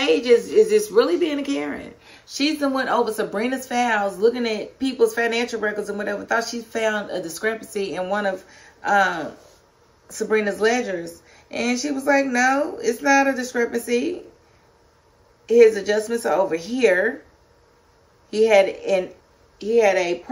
is just really being a Karen. She's the one over Sabrina's files, looking at people's financial records and whatever. Thought she found a discrepancy in one of Sabrina's ledgers. And she was like, no, it's not a discrepancy. His adjustments are over here. He had a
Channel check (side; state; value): both; identical; correlation 1.00